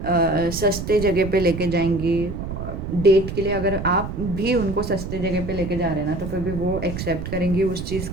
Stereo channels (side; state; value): right; noise; rumble, 6 dB below the sound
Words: सस्ते जगह पे लेके जाएंगी डेट के लिए। अगर आप भी उनको सस्ते जगह पे लेके जा रहे हैं ना, तो फिर भी वो एक्सेप्ट करेंगी उस चीज़